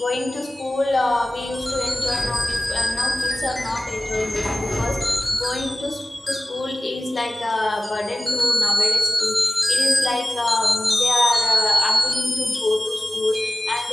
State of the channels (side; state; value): both; normal; correlation 0.97